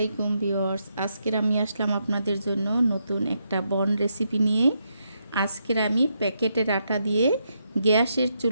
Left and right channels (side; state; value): both; inverted; correlation -0.80